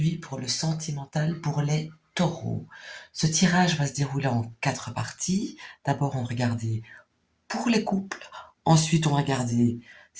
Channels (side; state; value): both; identical; correlation 1.00